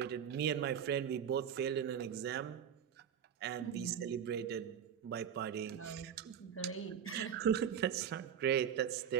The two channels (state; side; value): quieter; left; 8.5 dB